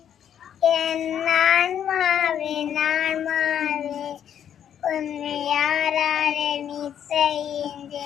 என் ஆன்மாவே உன்னை யாராலே நீ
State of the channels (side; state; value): right; quieter; 9.3 dB